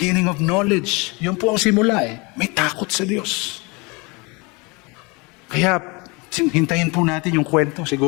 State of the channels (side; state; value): right; quieter; 27.8 dB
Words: of knowledge. Yun po ang simula eh. May takot sa Diyos. Kaya hintayin po natin yung kwento.